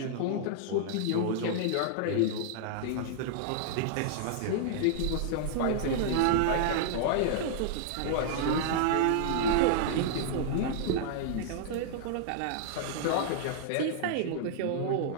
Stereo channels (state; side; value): different; both; correlation -0.01